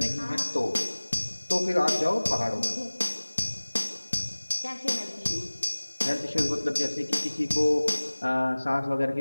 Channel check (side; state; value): both; inverted; correlation -1.00